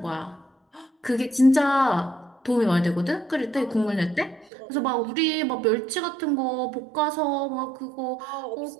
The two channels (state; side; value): drops out; left; at 4.5 s